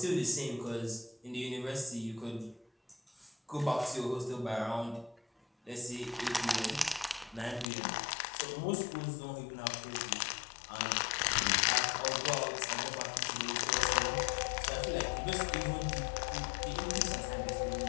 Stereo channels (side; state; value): right; drops out; at 7.7 s